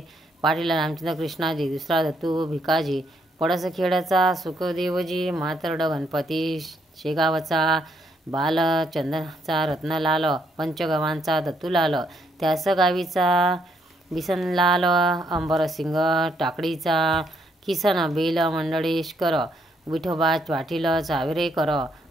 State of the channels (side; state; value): both; normal; correlation 0.73